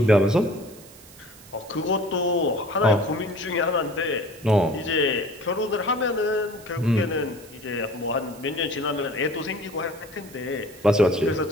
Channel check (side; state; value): right; noise; hiss, 21 dB below the sound